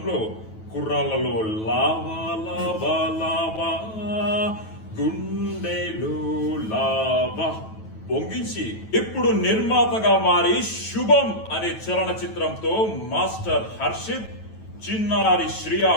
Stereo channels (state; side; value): late; right; 9.2 ms